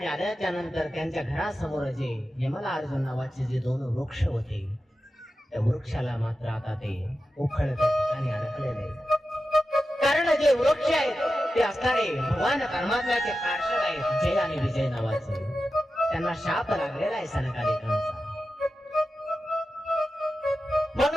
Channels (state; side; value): normal; both; correlation 0.92